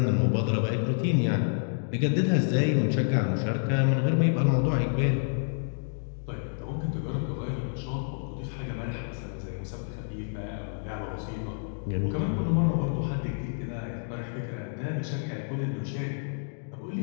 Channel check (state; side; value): silent; right; digital silence